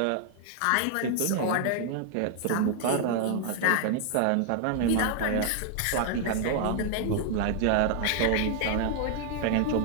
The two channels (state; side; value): different; both; correlation 0.00